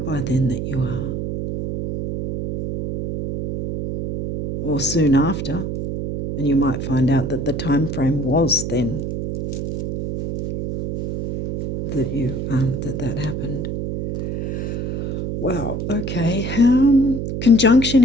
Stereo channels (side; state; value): right; noise; hum, 3 dB below the sound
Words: by then that you are, or soon after, and you might find out that the time frame was then that you that happened. Wow. Okay. Conjunction